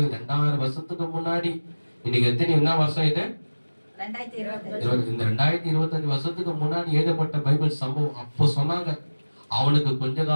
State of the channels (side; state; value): both; inverted; correlation -1.00